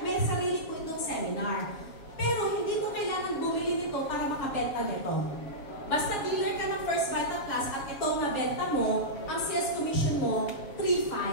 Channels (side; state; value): right; late; 7.2 ms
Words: sarili po itong seminar. Pero hindi mo kailangan bumili nito para makabenta nito. Basta dealer ka ng First Vital Class at itong nabenta mo, ang sales commission mo,